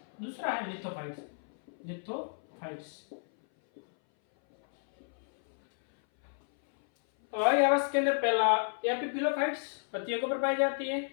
दूसरा है लिथोफाइट्स। और आवास के अंदर पहला एपिफिलोफाइट्स पत्तियों के ऊपर पाई जाती है,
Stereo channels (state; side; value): silent; right; 57 dB below the other